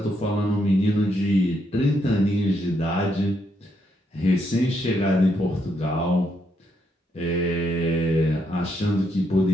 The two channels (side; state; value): both; normal; correlation 0.77